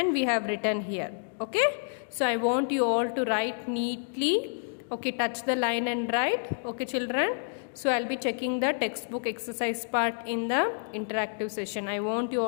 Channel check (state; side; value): silent; right; digital silence